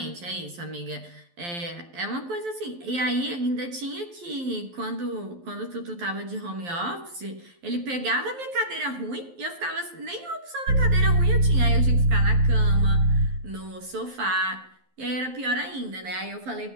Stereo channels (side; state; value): left; late; 11 ms